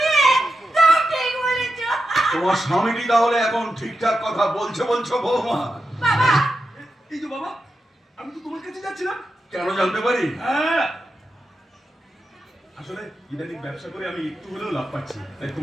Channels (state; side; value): normal; both; correlation 0.88